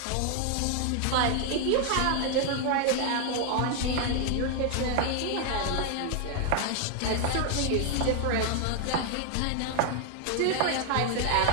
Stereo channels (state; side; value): different; both; correlation 0.00